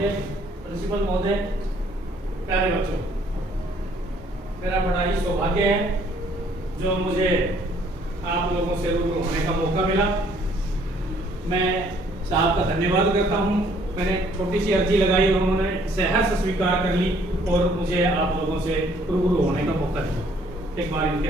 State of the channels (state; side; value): normal; both; correlation 0.62